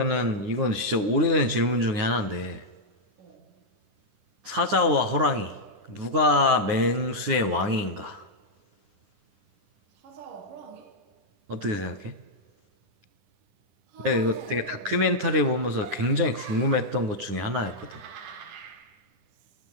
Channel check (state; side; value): late; left; 10 ms